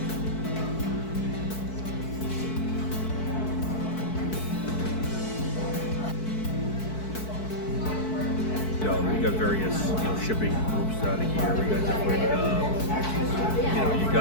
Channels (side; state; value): right; late; 4.6 ms